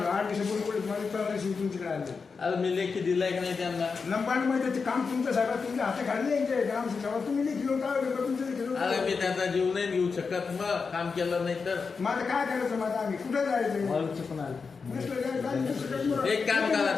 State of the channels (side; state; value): right; quieter; 5.0 dB